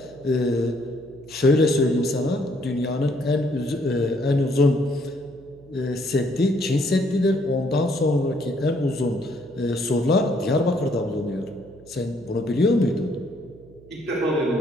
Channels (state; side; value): noise; right; hum, 24 dB below the sound